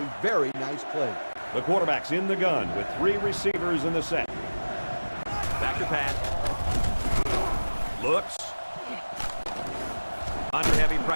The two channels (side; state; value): both; inverted; correlation -1.00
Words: very nice play. The quarterback's in the gun with 3 receivers in the set. Back to pass. Looks. Under heavy